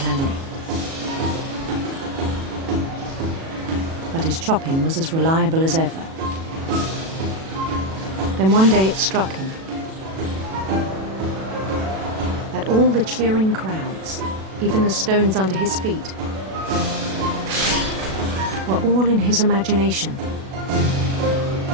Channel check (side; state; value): left; late; 37 ms